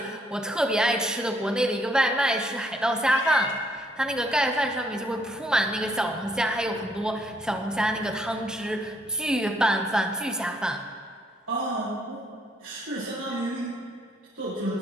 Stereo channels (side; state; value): both; normal; correlation 0.69